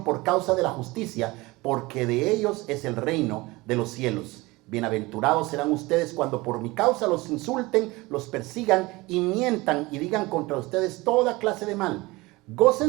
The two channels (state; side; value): quieter; left; 21.9 dB